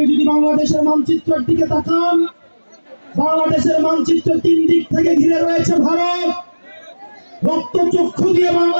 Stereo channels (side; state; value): both; inverted; correlation -1.00